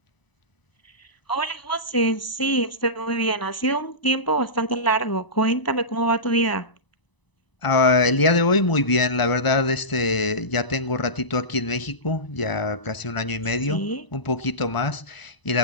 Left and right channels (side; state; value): right; late; 1.0 ms